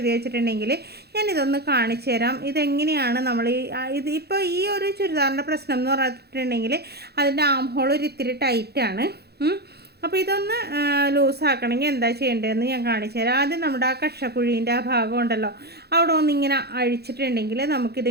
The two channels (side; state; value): left; late; 0.47 ms